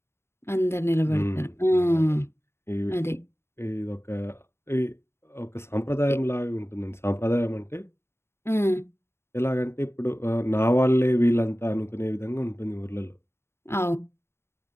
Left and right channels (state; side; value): late; right; 0.12 ms